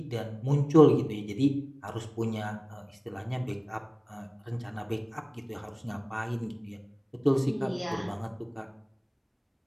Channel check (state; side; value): identical; both; correlation 1.00